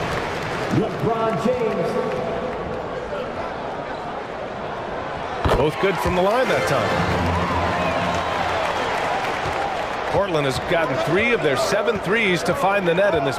LeBron James. Both good from the line that time. Portland has gotten 3 of their 7 threes to find the net in this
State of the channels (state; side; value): identical; both; correlation 1.00